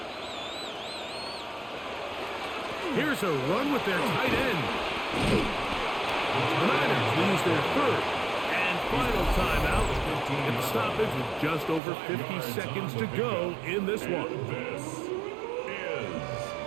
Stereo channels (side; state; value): left; drops out; at 11.8 s